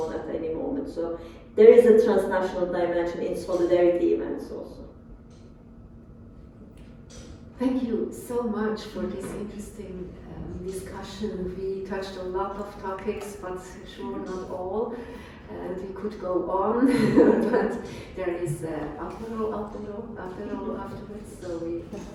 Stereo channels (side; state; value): both; identical; correlation 1.00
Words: at any moment. So there is a transnational dimension in solidarity events also. Thank you so much for this interesting discussion. We touched a lot of topics, but sure not all. And we could go on, but there is apéro afterwards, so we